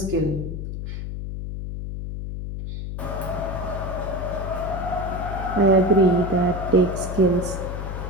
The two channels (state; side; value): noise; left; hum, 6 dB below the sound